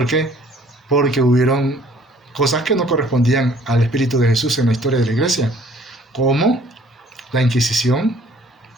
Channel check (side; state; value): both; normal; correlation 0.57